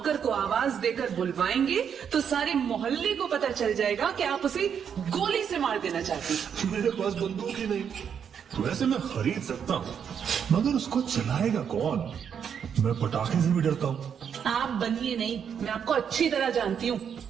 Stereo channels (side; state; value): left; quieter; 7.7 dB